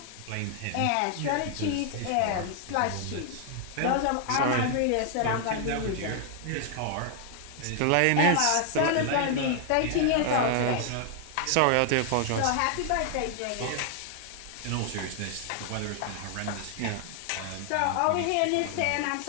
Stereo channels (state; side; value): different; both; correlation 0.00